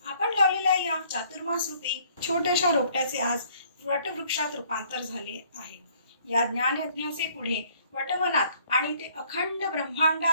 आपण लावलेल्या या चातुर्मास रूपी छोट्याशा रोपट्याचे आज वटवृक्षात रूपांतर झाले आहे. या ज्ञानयज्ञाचे पुढे वटवनात आणि ते अखंड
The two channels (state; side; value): inverted; both; correlation -0.61